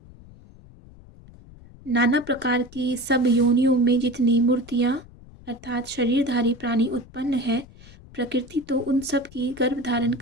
नाना प्रकार की सब योनियों में जितनी मूर्तियाँ अर्थात शरीरधारी प्राणी उत्पन्न है, प्रकृति तो उन सब की गर्भ धारण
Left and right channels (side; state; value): left; noise; rumble, 21 dB below the sound